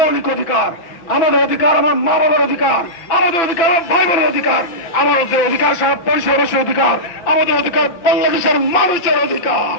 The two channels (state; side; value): late; right; 6.0 ms